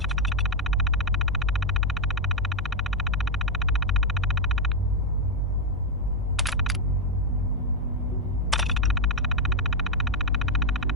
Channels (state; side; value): normal; both; correlation 0.02